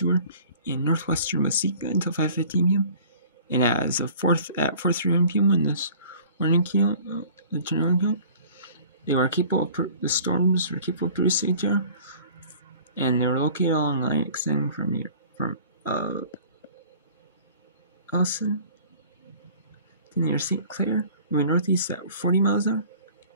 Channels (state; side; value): inverted; both; correlation -0.48